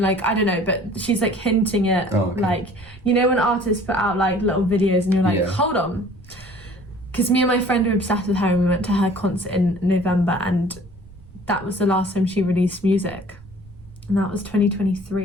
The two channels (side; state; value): right; noise; rumble, 21 dB below the sound